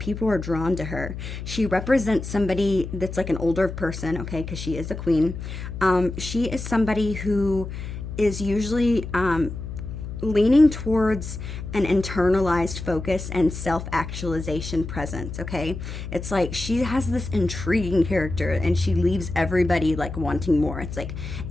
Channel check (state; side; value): noise; left; hum, 8 dB below the sound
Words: are drawn to her. She represents somebody that's like an older person, okay? Because she is a queen. She is somebody who is usually leaning towards an internalized focus and self-actualization presence, okay? It's like she has this intriguing character and she leaves everybody like wanting more. It's like